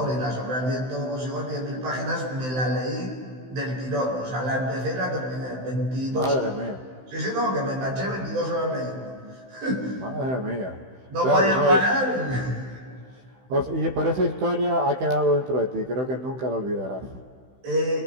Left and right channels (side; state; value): left; late; 16 ms